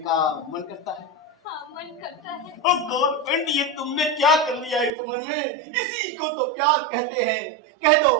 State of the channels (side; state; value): left; drops out; at 4.9 s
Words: मन करता है। हाँ, मन करता है। गवर्नमेंट, ये तुमने क्या कर लिया इस उम्र में? इसी को तो प्यार कहते हैं। कह दो,